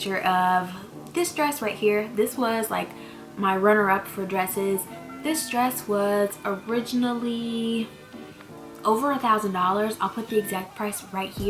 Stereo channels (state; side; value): identical; both; correlation 1.00